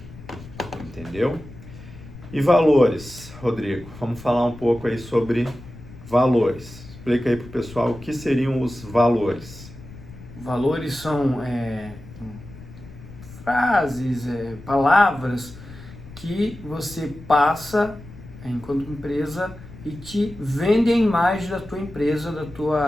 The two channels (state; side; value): noise; left; rumble, 17 dB below the sound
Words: Entendeu? E valores, Rodrigo? Vamos falar um pouco aí sobre valores. Explica aí para o pessoal o que seriam os valores. Valores são frases, palavras que você passa enquanto empresa e te vende a imagem da tua empresa, da